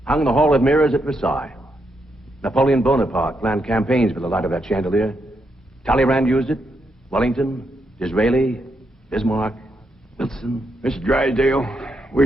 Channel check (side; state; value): both; normal; correlation 0.81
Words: hung in the Hall of Mirrors at Versailles. Napoleon Bonaparte planned campaigns for the light of that chandelier. Talleyrand used it. Wellington, Disraeli, Bismarck, Wilson. Mr. Drysdale,